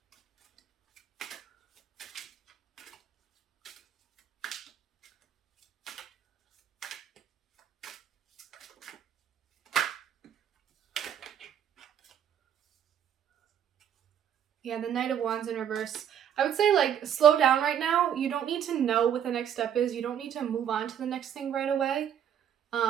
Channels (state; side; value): quieter; left; 9.3 dB